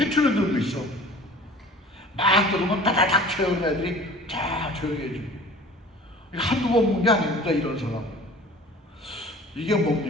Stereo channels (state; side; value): normal; both; correlation 0.44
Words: 들고 있어. 막 들으면 따다닥 채우는 애들이 다 조용히 해주고. 한두 번 본 게 아닙니다, 이런 사람. 이게